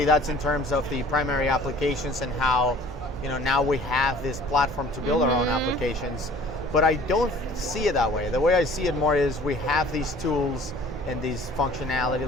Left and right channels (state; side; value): normal; both; correlation 0.49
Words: that's in terms of the primary applications and how, now we have this platform to build our own applications. but I don't see it that way. The way I see it more is we have these tools and these functionality,